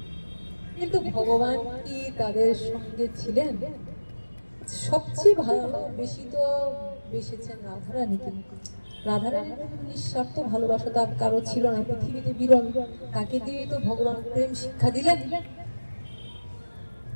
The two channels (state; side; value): inverted; both; correlation -1.00